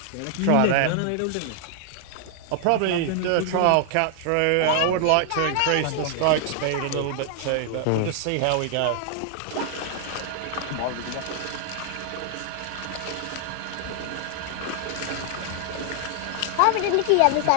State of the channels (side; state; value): both; different; correlation 0.00